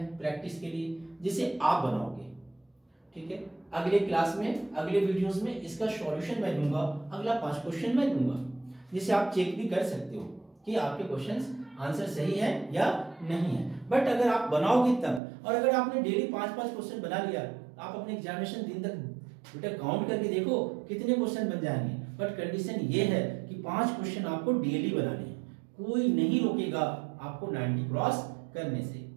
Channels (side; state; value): left; drops out; at 15.2 s